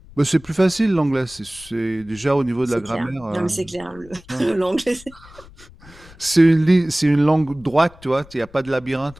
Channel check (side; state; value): left; noise; rumble, 23 dB below the sound